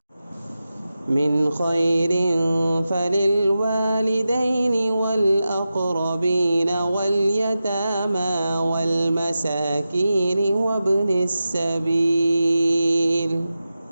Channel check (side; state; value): both; inverted; correlation -0.92